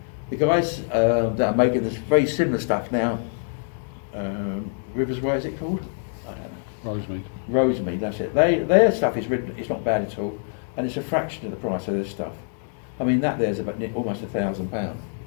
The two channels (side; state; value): right; silent; digital silence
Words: guys that are making this very similar stuff now, Rivers Way, is it called? I don't know. Rosemead, that's it. Their stuff is written. It's not bad at all, and it's a fraction of the price of this stuff. I mean, that there's about almost £1,000.